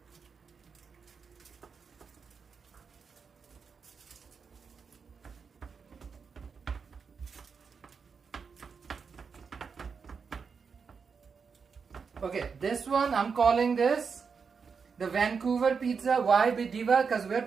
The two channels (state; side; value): quieter; left; 5.7 dB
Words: Okay, this one I'm calling this the Vancouver pizza. Why, Diva? Because we're